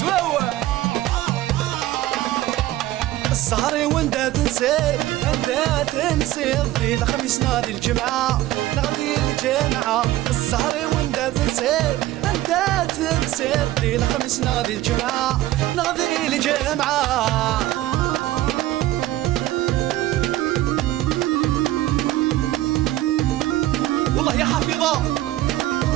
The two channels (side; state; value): left; quieter; 15.5 dB